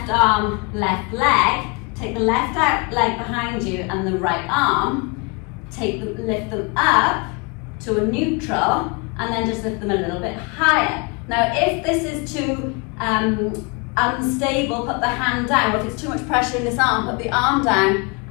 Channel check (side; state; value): right; quieter; 30.9 dB